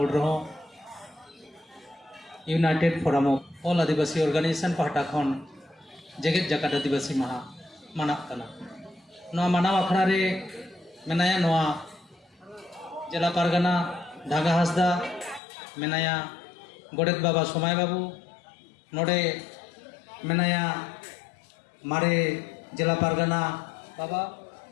रहो united forum of all Adivasi organisation पहटा खन जेगेत जगत आदिवासी महा मानक कना नोआ मानव अखड़ा रे मेनाया नोआ जिला पारगना ढागा हासदा मेनाया गोडेत बाबा सोमाय बाबू नोडे मेनाया मारे जिला पारगना बाबा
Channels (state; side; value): drops out; right; at 15.4 s